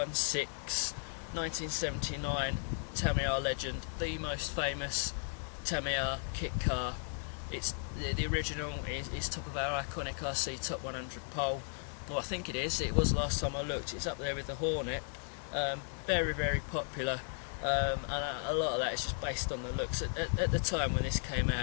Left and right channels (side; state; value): right; silent; 54 dB below the other